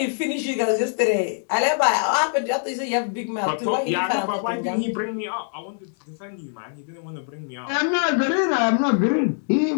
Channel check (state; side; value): silent; right; 63 dB below the other